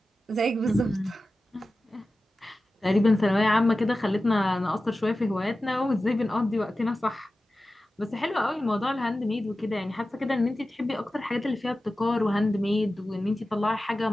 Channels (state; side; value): normal; both; correlation 0.95